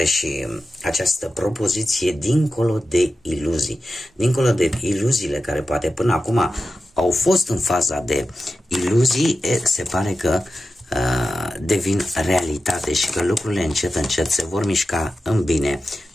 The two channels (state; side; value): normal; both; correlation 0.92